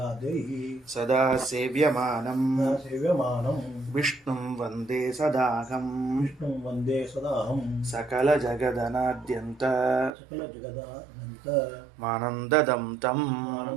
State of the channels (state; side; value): drops out; left; at 10.1 s